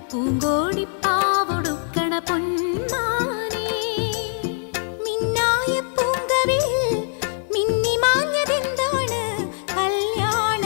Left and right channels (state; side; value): silent; right; digital silence